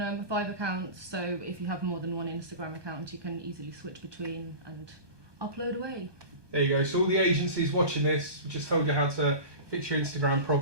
5 accounts. So if you have more than one Instagram account, you can easily switch between and upload away. There you go. So all the agencies watching this, we just told you how to fix your Instagram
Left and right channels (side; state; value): left; late; 1.2 ms